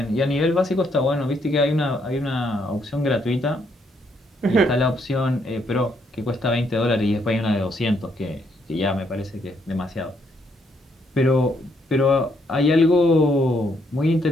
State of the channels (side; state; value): both; normal; correlation 0.73